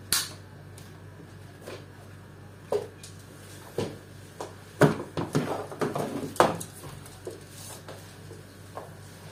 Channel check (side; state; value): both; identical; correlation 1.00